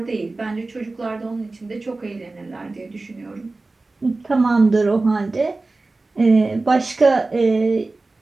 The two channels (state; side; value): quieter; left; 3.3 dB